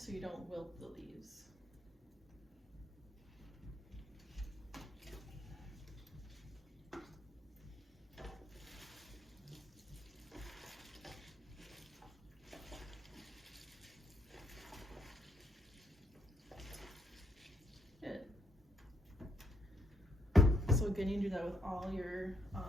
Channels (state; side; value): normal; both; correlation 0.74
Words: you don't wilt the leaves. So again, you do that with all your